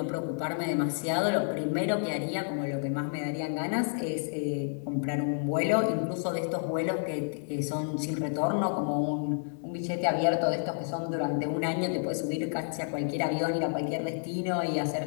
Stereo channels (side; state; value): right; silent; 58 dB below the other